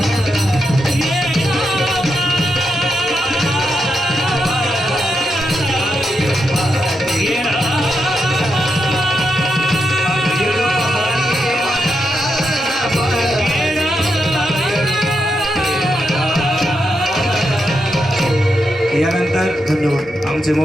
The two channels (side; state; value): both; normal; correlation 0.84